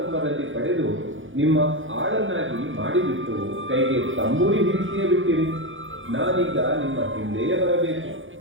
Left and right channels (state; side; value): late; left; 0.57 ms